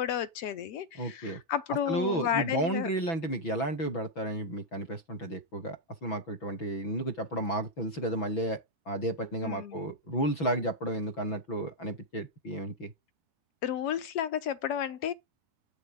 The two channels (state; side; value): late; right; 6.1 ms